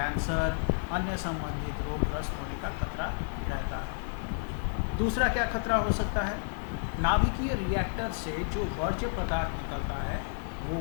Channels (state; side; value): silent; right; digital silence